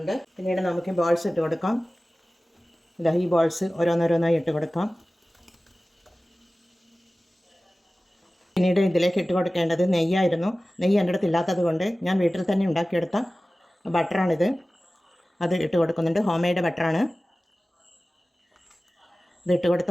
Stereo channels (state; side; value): normal; both; correlation 0.97